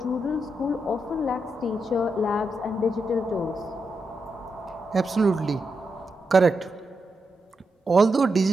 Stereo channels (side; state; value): both; normal; correlation 0.85